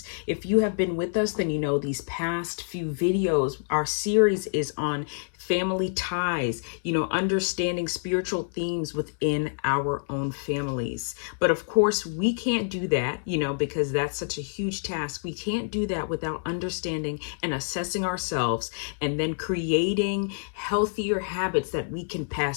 If you have been with us, then you know these past few videos, our series is on family ties, understanding spiritual themes within our own families. But of course, we can't do that, because that's such a huge task. We can't do that without understanding and assessing ourselves and then creating healthier habits that we can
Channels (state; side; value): silent; right; 60 dB below the other